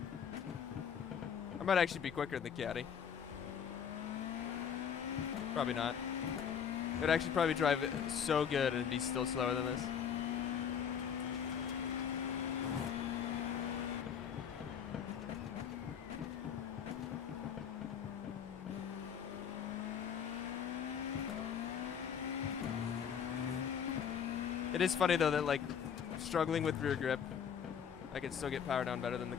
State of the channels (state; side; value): quieter; right; 7.8 dB